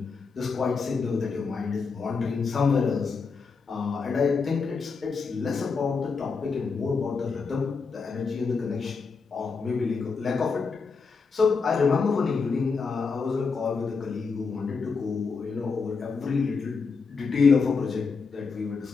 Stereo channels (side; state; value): right; quieter; 4.9 dB